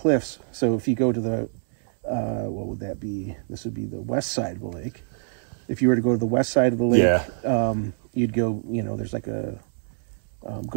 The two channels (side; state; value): left; silent; digital silence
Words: So if you go to the what would that be? This would be the west side of the lake. If you were to go to the west side of the lake, you'd go. There's like a